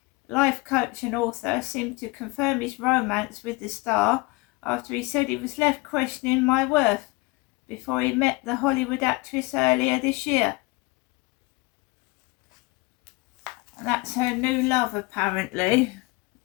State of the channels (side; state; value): right; quieter; 24.4 dB